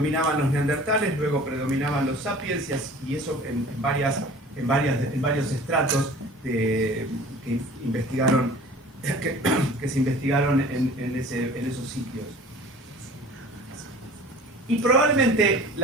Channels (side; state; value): both; normal; correlation 0.45